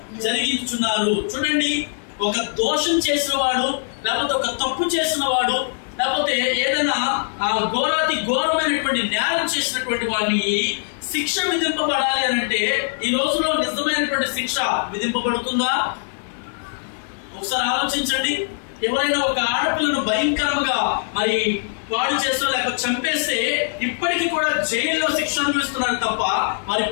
జరిగించున్నారు. చూడండి, ఒక దోషం చేసిన వాడు, లేకపోతే ఒక తప్పు చేసిన వాడు, లేకపోతే ఏదైనా ఘోరాతి ఘోరమైనటువంటి నేరం చేసినటువంటి వాడిని శిక్ష విధింపబడాలి అని అంటే ఈ రోజులో నిజమైనటువంటి శిక్ష విధింపబడుతుందా? ఒకసారి ఆలోచించండి. ఎవరైనా ఒక ఆడపిల్లను భయంకరంగా మరి పాడు చేస్తూ లేకపోతే చంపేస్తే ఇప్పటికీ కూడా జైల్లో శిక్ష అనుభవిస్తున్నారు తప్ప మరి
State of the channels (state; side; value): silent; right; digital silence